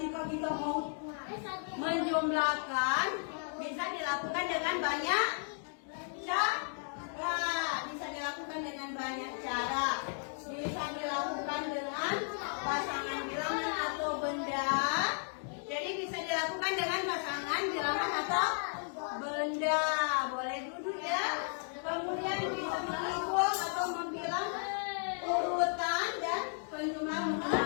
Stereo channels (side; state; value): right; silent; 55 dB below the other